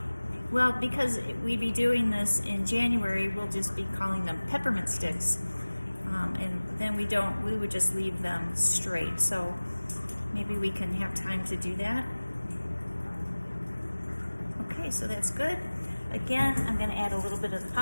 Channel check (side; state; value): both; inverted; correlation -1.00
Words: Well, because we'd be doing this in January, we'll just be calling them peppermint sticks. And then we would just leave them straight. So maybe we can have time to do that. Okay, so that's good. Again, I'm going to add a little bit of the